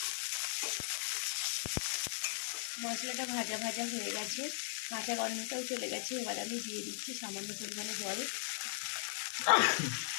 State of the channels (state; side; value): silent; right; digital silence